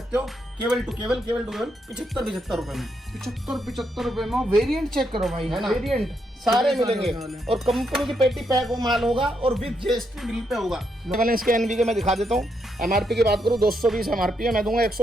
हो केवल टू केवल 75 रुपए में। 75 रुपए में वेरिएंट चेक करो भाई, है ना? वेरिएंट सारे मिलेंगे और कंपनी की पेटी पैक वो माल होगा और विद GST बिल पे होगा। पहले इसके NB मैं दिखा देता हूँ। MRP की बात करूँ 220 MRP है, मैं दूंगा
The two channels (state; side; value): normal; both; correlation 0.79